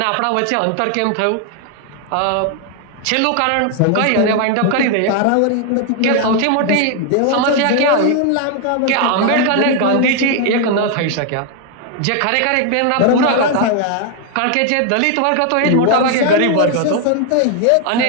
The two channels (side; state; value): both; different; correlation 0.00